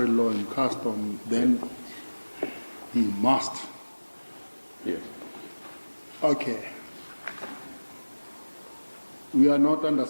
law and custom, then he must. Yes. Okay. We are not under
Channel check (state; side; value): inverted; both; correlation -1.00